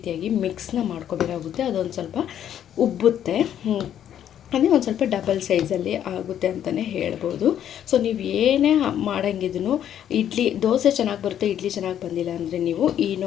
ಮಿಕ್ಸ್ನ ಮಾಡ್ಕೋಬೇಕಾಗುತ್ತೆ. ಅದೊಂದು ಸ್ವಲ್ಪ ಉಬ್ಬುತ್ತೆ, ಅಂದರೆ ಒಂದು ಸ್ವಲ್ಪ ಡಬಲ್ ಸೈಜಲ್ಲಿ ಆಗುತ್ತೆ ಅಂತಲೇ ಹೇಳ್ಬೋದು. ಸೊ ನೀವು ಏನೇ ಮಾಡೋಂಗಿದ್ರೂ ದೋಸೆ ಚೆನ್ನಾಗಿ ಬರುತ್ತೆ, ಇಡ್ಲಿ ಚೆನ್ನಾಗಿ ಬಂದಿಲ್ಲ ಅಂದರೆ ನೀವು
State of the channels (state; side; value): quieter; right; 10.2 dB